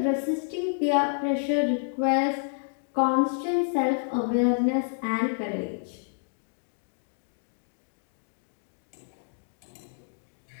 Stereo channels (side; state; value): right; silent; digital silence